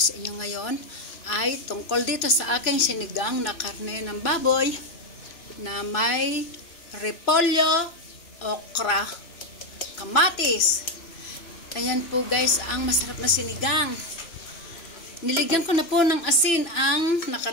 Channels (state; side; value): late; right; 3.0 ms